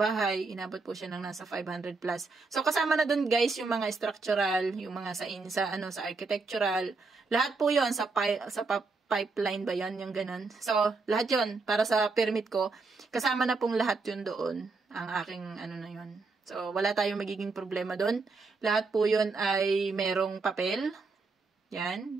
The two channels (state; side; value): quieter; left; 4.0 dB